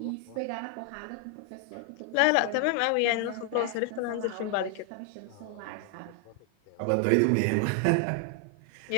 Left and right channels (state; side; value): different; both; correlation 0.00